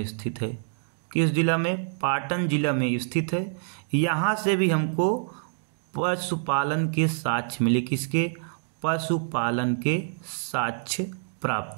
स्थित है। किस जिला में? पाटन जिला में स्थित है। यहाँ से भी हमको पशुपालन के साक्ष्य मिले। किसके? पशुपालन के साक्ष्य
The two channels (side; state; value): left; silent; digital silence